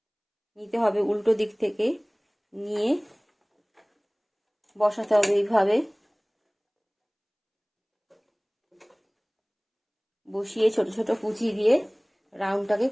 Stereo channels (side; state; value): both; identical; correlation 1.00